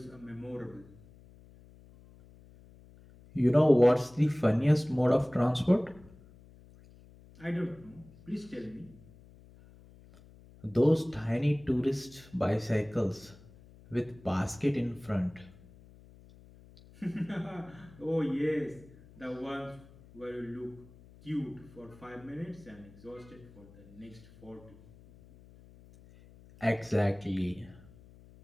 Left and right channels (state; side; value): noise; left; hum, 23 dB below the sound